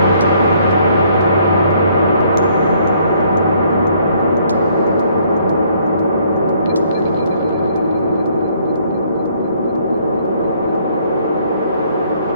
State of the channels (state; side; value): inverted; both; correlation -0.64